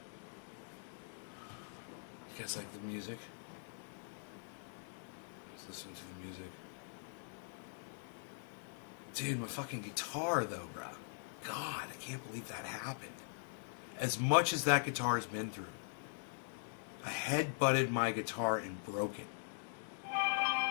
Like the music. Let's listen to the music. Dude, my fucking guitar though, bro. God, I can't believe that happened. As much as that guitar has been through, I head-butted my guitar and broke it.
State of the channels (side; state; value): right; silent; digital silence